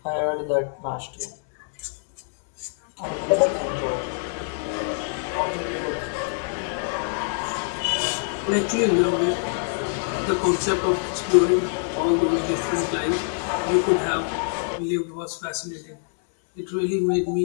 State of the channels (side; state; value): right; silent; digital silence